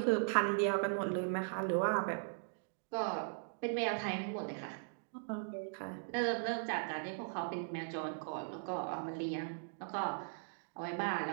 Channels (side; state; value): left; silent; digital silence